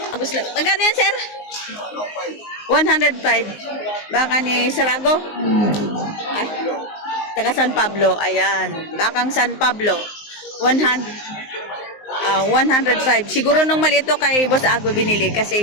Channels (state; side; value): late; right; 19 ms